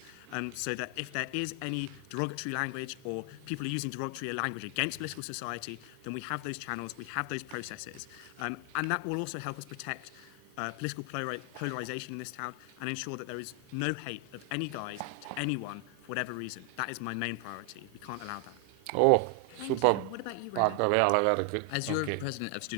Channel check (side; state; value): both; different; correlation 0.00